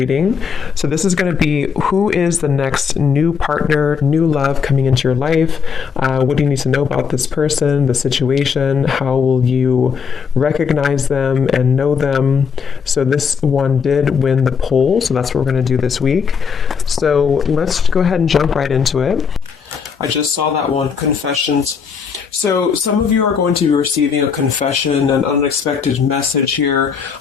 So this is going to be who is the next new partner, new love coming into your life. What do you need to know about this person, the situation? How will you recognize them and know them? So this one did win the poll, so that's what we're going to do this week. So let's go ahead and jump right into it. I just saw that one, confessions. So some of you are going to be receiving a confession, an unexpected message here.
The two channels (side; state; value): right; quieter; 6.3 dB